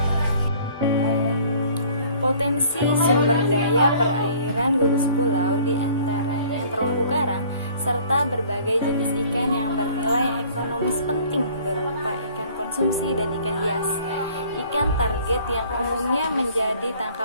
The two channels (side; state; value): both; inverted; correlation -0.53